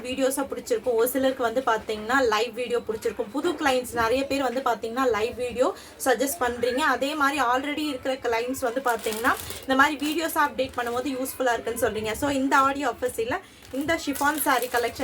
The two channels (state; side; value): identical; both; correlation 1.00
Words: வீடியோஸாக பிடிச்சிருக்கும், ஒரு சிலருக்கு வந்து பார்த்தீங்கன்னா லைவ் வீடியோ பிடிச்சிருக்கும். புது கிளைண்ட்ஸ் நிறைய பேர் வந்து பார்த்தீங்கன்னா லைவ் வீடியோ சஜஸ்ட் பண்ணுறீங்க. அதே மாதிரி ஆல்ரெடி இருக்கிற கிளைண்ட்ஸ் வந்து பார்த்தீங்கன்னா இந்த மாதிரி வீடியோஸாக அப்டேட் பண்ணும்போது யூஸ்ஃபுல்லாக இருக்குன்னு சொல்கிறீங்க. ஸோ இந்த ஆடியோ ஆஃபர்ஸில் இந்த ஷிஃபான் சாரீ